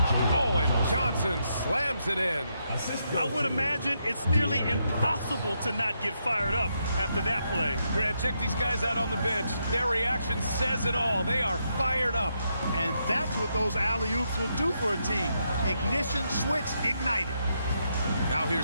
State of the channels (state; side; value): inverted; both; correlation -0.80